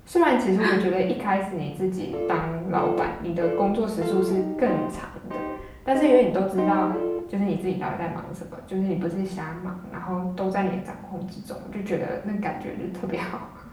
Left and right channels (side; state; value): both; identical; correlation 1.00